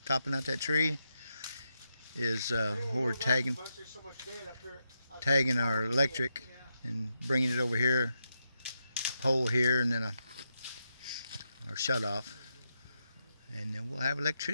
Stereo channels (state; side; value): inverted; both; correlation -0.85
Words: out that tree is where we're tagging our electric and bringing it over here, pole here, and then our shut off, and then we'll have